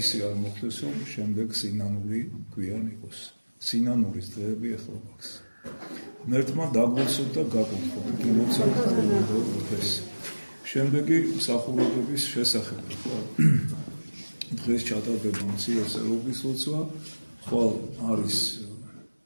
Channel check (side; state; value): both; inverted; correlation -1.00